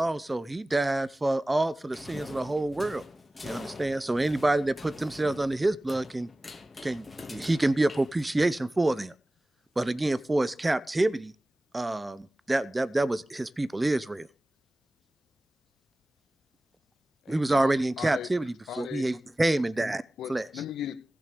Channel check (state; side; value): normal; both; correlation 0.97